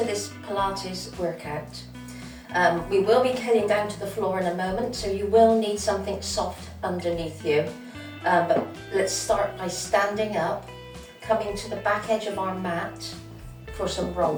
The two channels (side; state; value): both; identical; correlation 1.00